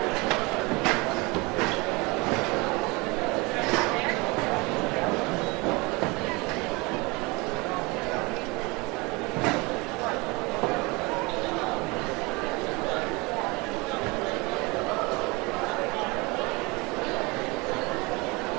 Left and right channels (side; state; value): left; quieter; 25.8 dB